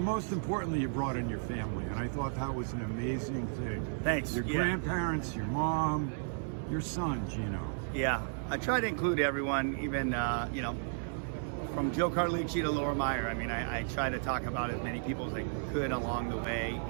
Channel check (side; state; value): left; silent; 55 dB below the other